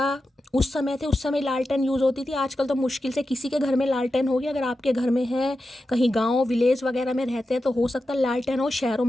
उस समय थे, उस समय लालटेन यूज़ होती थी। आजकल तो मुश्किल से किसी के घर में लालटेन होगी, अगर आपके घर में है, कहीं गांव विलेज वगैरह में रहते हैं तो हो सकता है लालटेन हो, शहरों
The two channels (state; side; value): normal; both; correlation 0.91